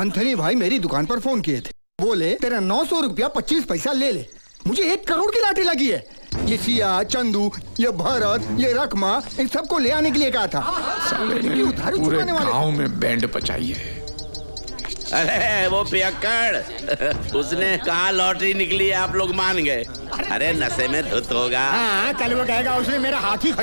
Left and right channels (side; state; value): both; inverted; correlation -1.00